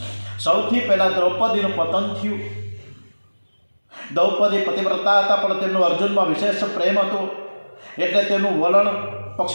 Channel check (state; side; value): inverted; both; correlation -1.00